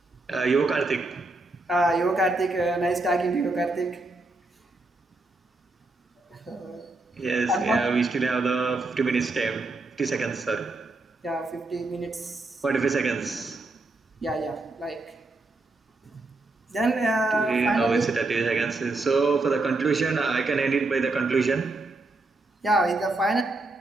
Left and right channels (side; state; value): left; quieter; 3.1 dB